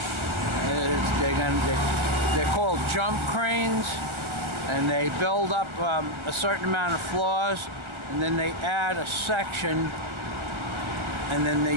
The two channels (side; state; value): left; late; 1.4 ms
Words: They're called jump cranes, and they build up a certain amount of floors, and then they add a section, and then